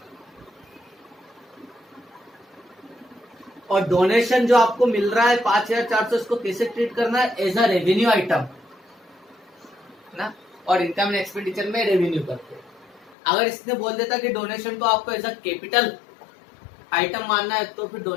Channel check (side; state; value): right; drops out; at 13.2 s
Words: और डोनेशन जो आपको मिल रहा है 5,400, इसको कैसे ट्रीट करना है, एज अ रेवेन्यू आइटम ना, और इनकम एंड एक्सपेंडिचर में रेवेन्यू करते हैं। अगर इसने बोल देता कि डोनेशन को आपको एज अ कैपिटल आइटम मानना है, तो फिर